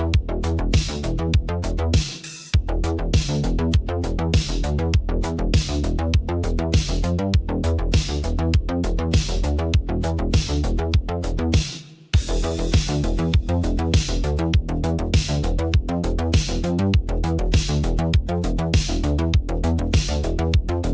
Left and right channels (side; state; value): both; identical; correlation 1.00